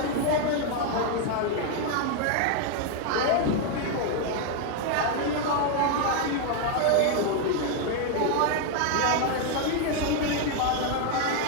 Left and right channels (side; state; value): both; different; correlation 0.01